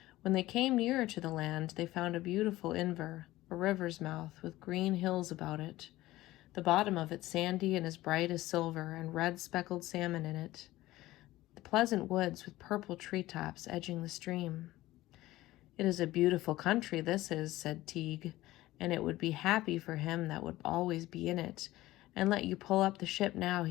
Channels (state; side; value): quieter; right; 17.0 dB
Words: When they came nearer to the land, they found a beautiful Inver, a river's mouth, with green hills about it, the bottom of it sandy and as bright as silver, and red speckled salmon in it, the pleasant woods with purple treetops edging the stream. "It is a beautiful country, this is," said Teague, "and it would be happy for him that would always be in it. And let you pull up the ship now,"